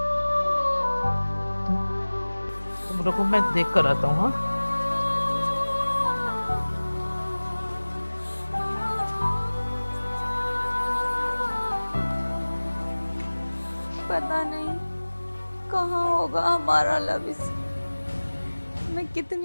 तुम रुको, मैं देख कर आता हूँ। हाँ पता नहीं कहाँ होगा हमारा लबिस। मैं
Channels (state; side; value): inverted; both; correlation -1.00